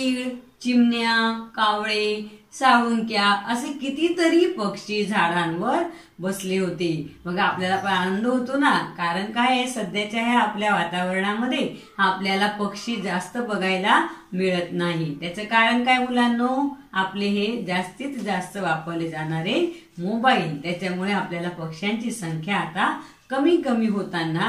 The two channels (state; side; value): identical; both; correlation 1.00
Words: चिमण्या, कावळे, साळुंक्या असे कितीतरी पक्षी झाडांवर बसले होते. मग आपल्याला पण आनंद होतो ना, कारण काय आहे, सध्याच्या ह्या आपल्या वातावरणामध्ये आपल्याला पक्षी जास्त बघायला मिळत नाही. त्याचं कारण काय मुलांनो, आपले हे जास्तीत जास्त वापरले जाणारे मोबाईल, त्याच्यामुळे आपल्याला पक्ष्यांची संख्या आता कमी कमी